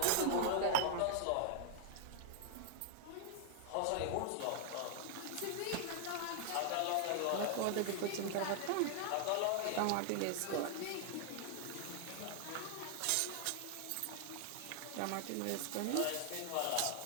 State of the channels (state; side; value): different; both; correlation 0.00